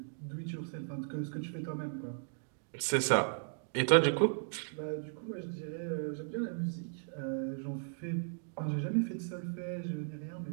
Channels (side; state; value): left; silent; digital silence